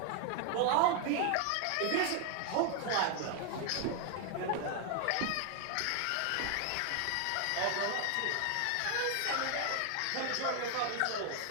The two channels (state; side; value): different; both; correlation 0.00